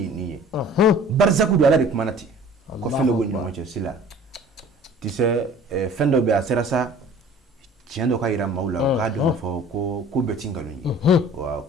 ni barzaku do ala de kumanati ko fendo go nyoma che sila tise fendo be asera sa tiendo ka ira maula ka do fo ko betinga ni wa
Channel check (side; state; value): both; normal; correlation 0.48